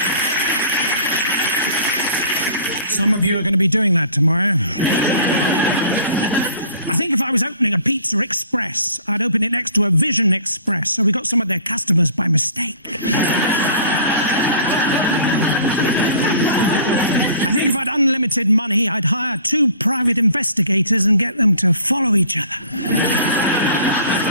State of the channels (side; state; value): both; inverted; correlation -0.49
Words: Some of you are going to be doing that tomorrow. I think if I was opening a Pizza Express, I'd open it next to a Vision Express, so we got some of their customers by mistake. I think if I had unlimited money, I'd hire 2 private investigators and get them to follow each other.